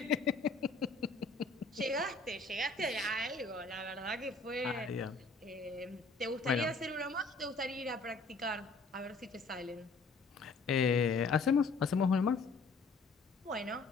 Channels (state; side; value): quieter; right; 3.7 dB